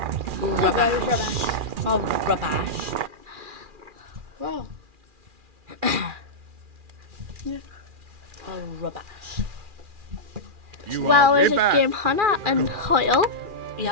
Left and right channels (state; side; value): late; left; 2.4 ms